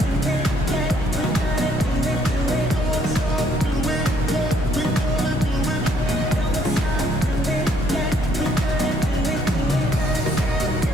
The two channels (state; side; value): normal; both; correlation 0.66